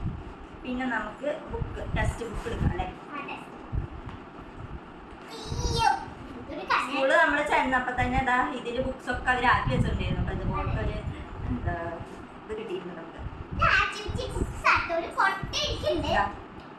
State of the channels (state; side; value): identical; both; correlation 1.00